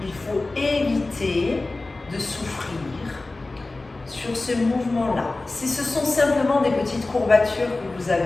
Il faut éviter de souffrir sur ce mouvement-là. Si ce sont simplement des petites courbatures que vous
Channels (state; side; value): quieter; right; 3.2 dB